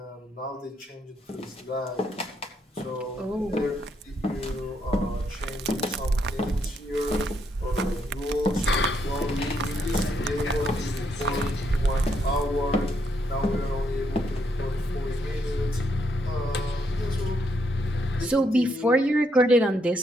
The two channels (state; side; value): normal; both; correlation 0.76